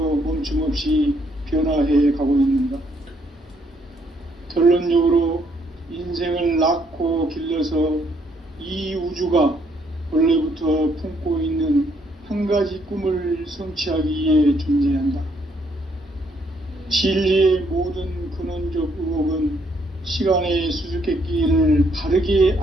멈춤 없이 변화해 가고 있는가? 결론적으로 인생을 낳고 길러서 이 우주가 원래부터 품고 있는 한 가지 꿈을 성취하기 위해 존재한다. 진리의 모든 근원적 의혹은 시간의 수수께끼를 바르게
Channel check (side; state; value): both; normal; correlation 0.70